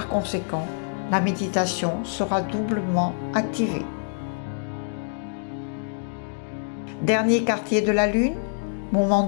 conséquent, la méditation sera doublement activée. Dernier quartier de la lune, moment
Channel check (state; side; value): silent; right; digital silence